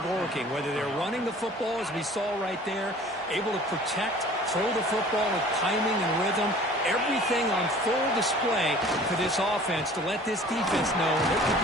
working, whether they're running the football, as we saw right there, able to protect, throw the football with timing and rhythm. everything on full display for this offense to let this defense know they could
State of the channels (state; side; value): normal; both; correlation 0.48